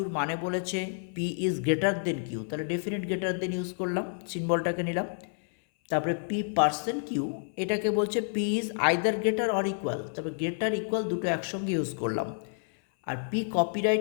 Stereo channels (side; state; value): right; silent; 58 dB below the other